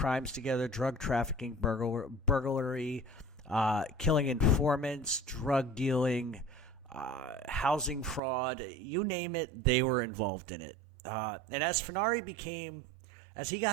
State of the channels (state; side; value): drops out; left; at 8.2 s